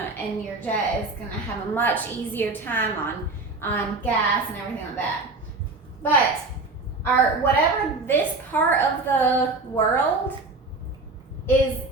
jet is gonna have a much easier time on gas and everything like that. But whatever this part of the world is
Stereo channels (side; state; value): left; quieter; 3.4 dB